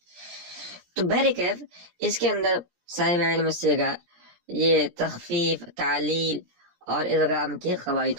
تو بہرکیف اس کے اندر صاحب علم الصیغہ یہ تخفیف، تعلیل اور ادغام کے قواعد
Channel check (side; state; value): left; late; 17 ms